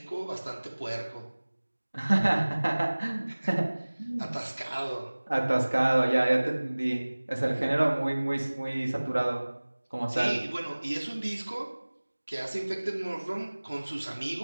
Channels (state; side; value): inverted; both; correlation -1.00